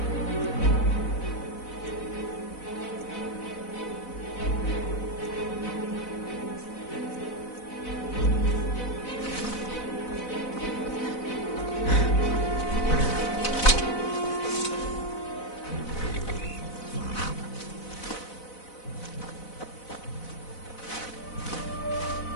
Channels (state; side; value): late; right; 4.0 ms